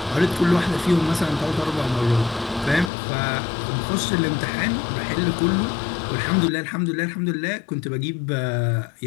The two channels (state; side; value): drops out; right; at 2.9 s